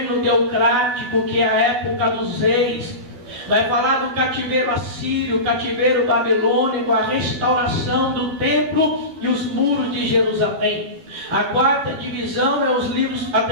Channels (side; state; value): left; late; 12 ms